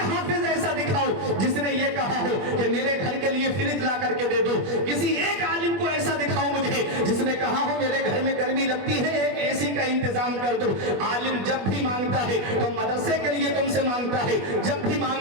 हाफिज ऐसा दिखाओ जिसने ये कहा हो कि मेरे घर के लिए फ्रिज ला करके दे दो। किसी एक आलिम को ऐसा दिखाओ मुझे जिसने कहा हो मेरे घर में गर्मी लगती है, एक एसी का इंतजाम कर दो। आलिम जब भी मांगता है तो मदरसे के लिए तुमसे मांगता है, जब भी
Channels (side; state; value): left; late; 20 ms